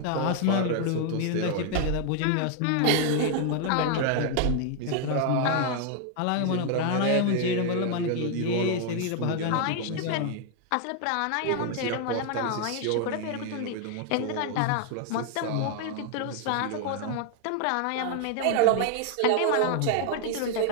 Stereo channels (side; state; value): both; different; correlation 0.00